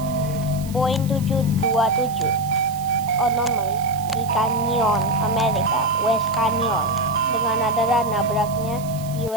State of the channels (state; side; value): noise; right; hiss, 17 dB below the sound